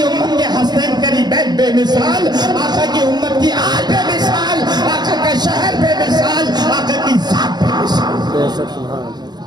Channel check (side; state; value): left; late; 0.20 ms